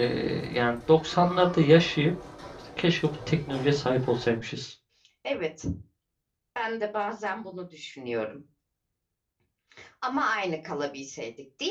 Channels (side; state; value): both; identical; correlation 1.00